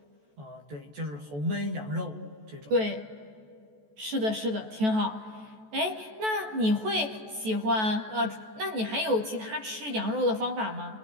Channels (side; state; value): left; late; 14 ms